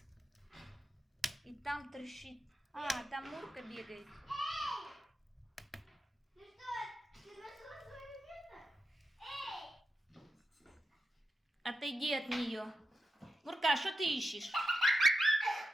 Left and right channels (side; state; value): both; normal; correlation 0.88